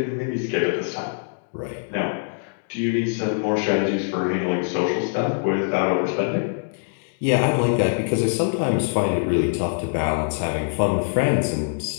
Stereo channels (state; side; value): silent; right; digital silence